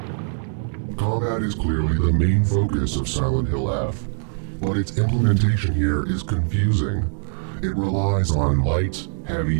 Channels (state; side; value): silent; left; digital silence